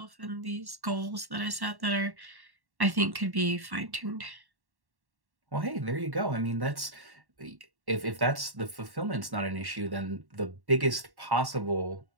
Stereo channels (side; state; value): left; late; 1.1 ms